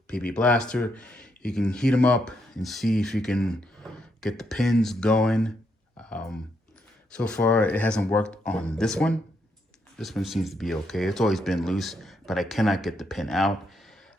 PB Blaster. You can heat them up and see if you can get the pins going. So far, it hasn't worked on this one. This one seems to be okay. It's always been loose, but I cannot get the pin out.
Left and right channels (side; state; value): both; normal; correlation 0.78